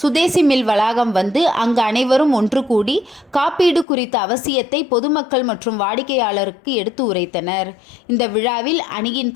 சுதேசி மில் வளாகம் வந்து அங்கு அனைவரும் ஒன்று கூடி காப்பீடு குறித்த அவசியத்தை பொதுமக்கள் மற்றும் வாடிக்கையாளருக்கு எடுத்து உரைத்தனர். இந்த விழாவில் அணியின்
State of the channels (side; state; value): right; drops out; at 3.9 s